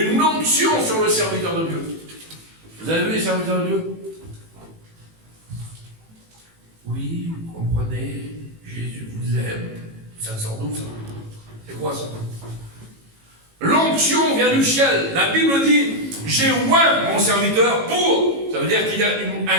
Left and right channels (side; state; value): left; late; 18 ms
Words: onction sur le serviteur de Dieu. Vous avez vu les serviteurs de Dieu? Oui, vous comprenez, Jésus vous aime. Ça sort d'où ça? C'est quoi ça? L'onction vient du ciel. La Bible dit, j'ai oint mon serviteur pour. Ça veut dire qu'il y a